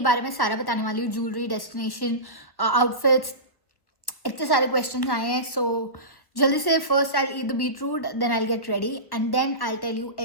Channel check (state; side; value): late; right; 1.1 ms